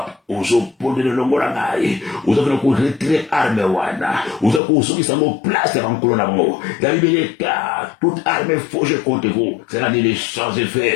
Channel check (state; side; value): drops out; right; at 4.6 s